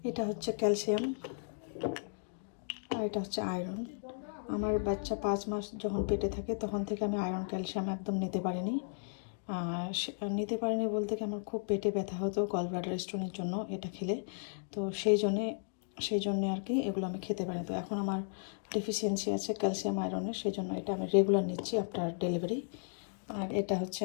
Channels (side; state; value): right; silent; digital silence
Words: এটা হচ্ছে ক্যালসিয়াম আর এটা হচ্ছে আয়রন। আমার বাচ্চা 5 মাস যখন পেটে থাকে তখন থেকে আমি আয়রন ক্যালসিয়াম একদম নিতে পারিনি। নিতে পারিনি বলতে কি আমার খুব পেটে ব্যথা হতো গল ব্লাডার স্টোনের জন্য এটা খেলে। তো সেই জন্যে আর কি এগুলো আমি খেতে পারিনি। তো এখন আমার ডেফিসিয়েন্সি আছে ক্যালসিয়াম আয়রনের, সেই জন্য এটা আমি রেগুলার নিচ্ছি আফটার ডেলিভারি। আর এটা হচ্ছে